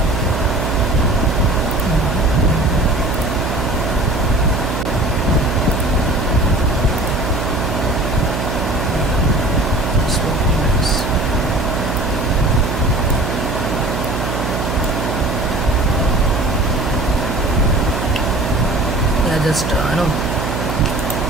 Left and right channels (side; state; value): right; noise; hum, 3 dB below the sound